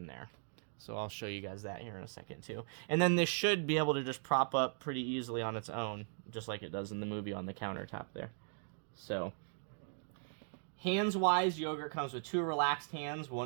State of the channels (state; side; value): silent; left; digital silence